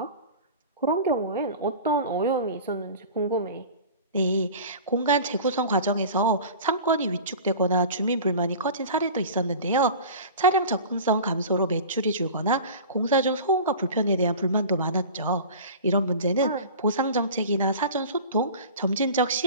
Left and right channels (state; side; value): inverted; both; correlation -0.37